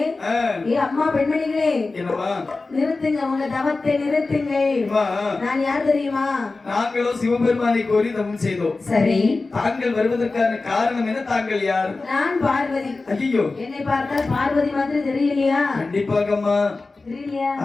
ஏ அம்மா பெண்மணிகளே, என்னம்மா நிறுத்துங்க, உங்க தவத்தை நிறுத்துங்கள். நான் யார் தெரியுமா? நாங்களோ சிவபெருமானை கோரி தவம் செய்தோம். சரி தாங்கள் வருவதற்கான காரணம் என்ன? தாங்கள் யார்? நான் பார்வதி. ஐயோ என்னை பார்த்தால் பார்வதி மாதிரி தெரியலையா? கண்டிப்பாகம்மா தெரியலையா?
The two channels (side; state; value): right; quieter; 3.6 dB